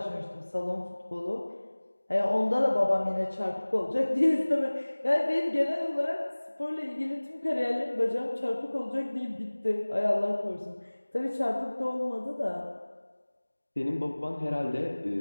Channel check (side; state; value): both; inverted; correlation -1.00